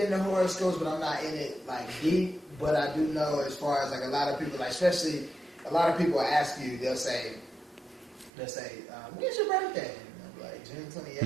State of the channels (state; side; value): drops out; left; at 8.3 s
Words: horoscopes, but I'm not in it like deep. But I do know, as far as like a lot of people, like, especially a lot of people ask you, they'll say, when's your birthday? And I'm like, June